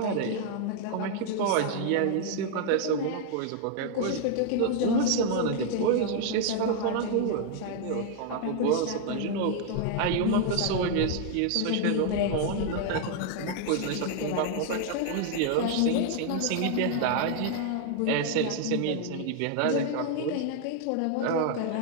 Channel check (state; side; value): different; both; correlation 0.00